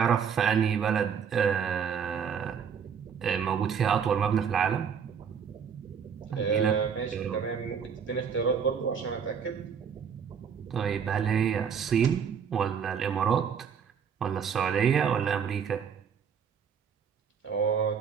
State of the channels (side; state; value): left; quieter; 7.1 dB